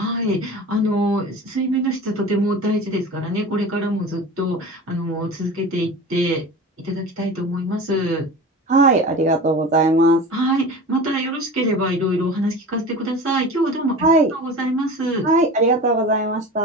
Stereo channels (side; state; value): both; normal; correlation 0.34